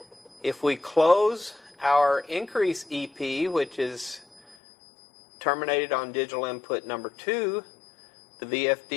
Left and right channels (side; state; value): right; drops out; at 4.5 s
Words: If we close our increase EP, which is terminated on digital input number 2, the